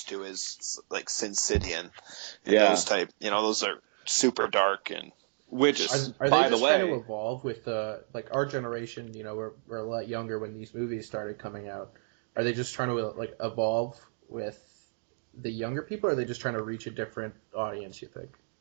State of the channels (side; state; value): left; silent; 57 dB below the other